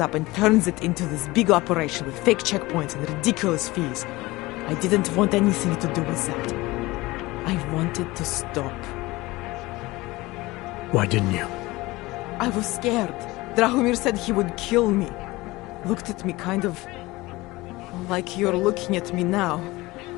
and turns it into this big operation with fake checkpoints and ridiculous fees. I didn't want anything to do with that. I wanted to stop. Why didn't you? I was scared. Drahomir said he would kill me. Looked at me kind of like you're looking at me now.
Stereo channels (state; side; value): quieter; right; 20.6 dB